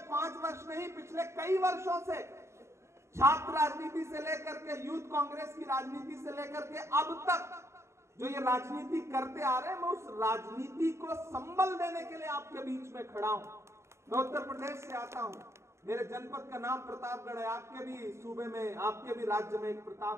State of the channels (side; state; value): left; late; 0.13 ms